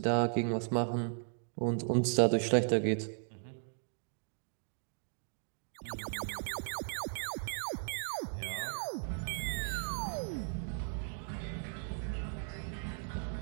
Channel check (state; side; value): silent; left; 53 dB below the other